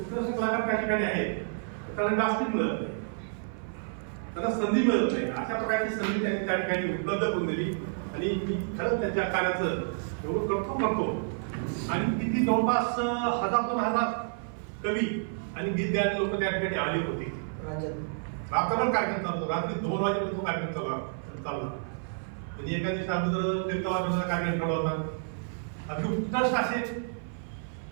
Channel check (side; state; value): left; silent; 56 dB below the other